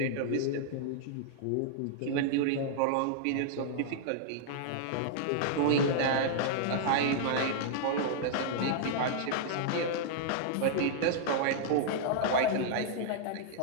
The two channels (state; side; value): different; both; correlation -0.01